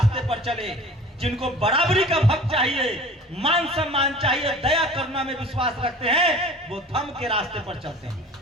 पर चले। जिनको बराबरी का हक चाहिए, मान सम्मान चाहिए, दया करुणा में विश्वास रखते हैं, वो धर्म के रास्ते पर चलते हैं।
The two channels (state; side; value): normal; both; correlation 0.42